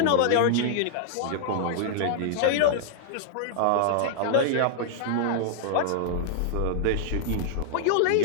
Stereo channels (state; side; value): different; both; correlation -0.01